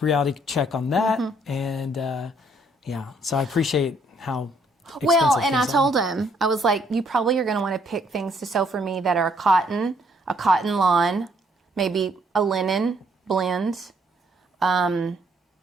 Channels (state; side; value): normal; both; correlation 0.68